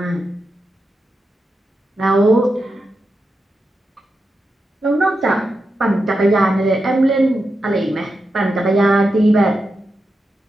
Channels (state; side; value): normal; both; correlation 0.88